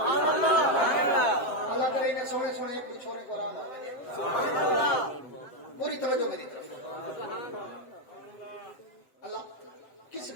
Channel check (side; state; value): right; late; 7.7 ms